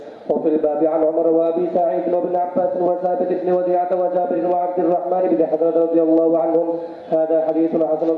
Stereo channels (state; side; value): identical; both; correlation 1.00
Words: وفي الباب عن عمر وأبي سعيد وابن عباس وثابت بن وديعة وجابر وعبد الرحمن بن حضرة رضي الله عنهم. هذا حديث حسن